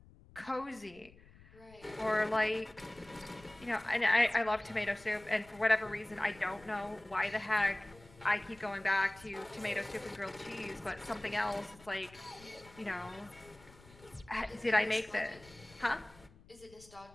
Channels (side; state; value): left; noise; rumble, 23 dB below the sound